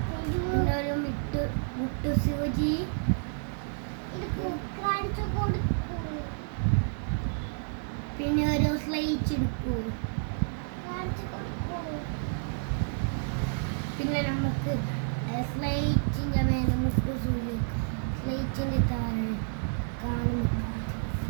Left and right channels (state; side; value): silent; left; digital silence